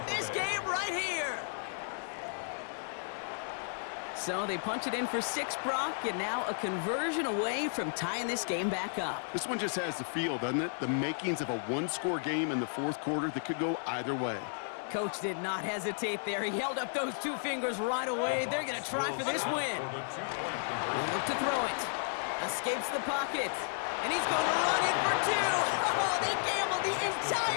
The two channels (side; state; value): right; silent; 56 dB below the other